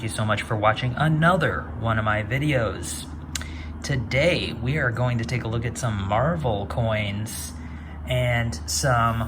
you so much for watching another one of my videos. Today we are going to take a look at some Marvel coins and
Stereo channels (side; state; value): both; identical; correlation 1.00